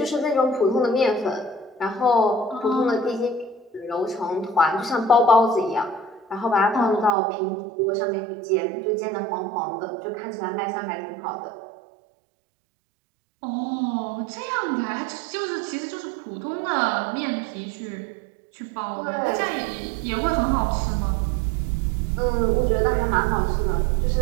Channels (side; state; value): left; drops out; at 7.1 s